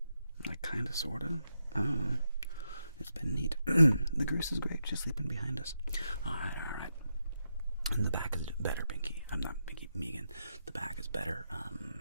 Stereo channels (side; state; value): both; inverted; correlation -0.84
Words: Like, kinda, sorta? I don't know. It's been neat. The goose is great. She's sleeping behind us. Alright. And the back is better, Binky. I'm not Binky, Megan. The back is better.